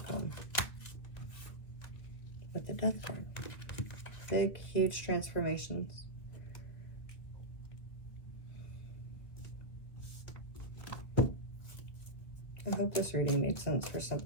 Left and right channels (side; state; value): right; late; 1.7 ms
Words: With the Death card. Big, huge transformations. I hope this reading made sense for